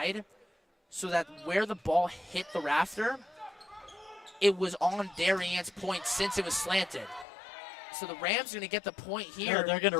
so that where the ball hit the rafter, it was on Darien's point since it was slanted. So the Rams are going to get the point here. Yeah, they're going to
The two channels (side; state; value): right; drops out; at 7.2 s